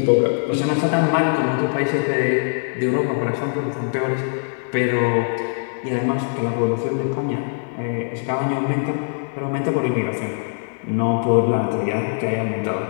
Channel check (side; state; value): right; silent; digital silence